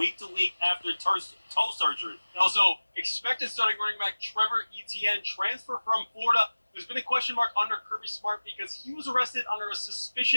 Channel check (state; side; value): inverted; both; correlation -1.00